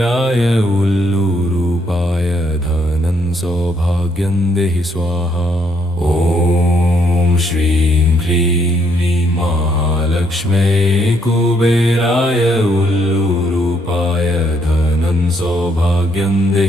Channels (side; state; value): both; normal; correlation 0.72